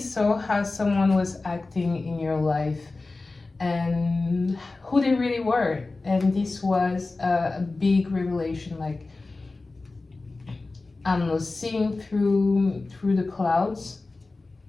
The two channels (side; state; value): right; quieter; 3.4 dB